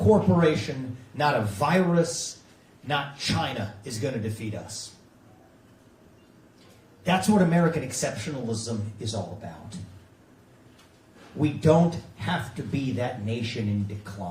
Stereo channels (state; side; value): identical; both; correlation 1.00